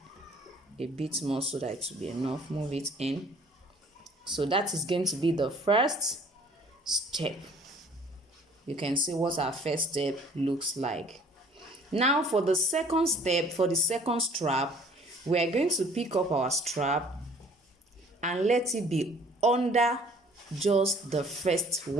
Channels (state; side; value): normal; both; correlation 0.54